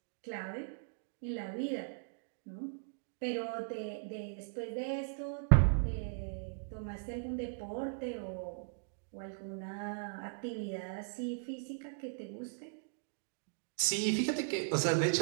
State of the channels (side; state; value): left; silent; digital silence